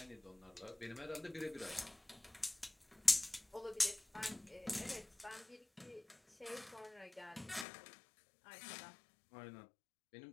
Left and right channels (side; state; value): right; drops out; at 7.7 s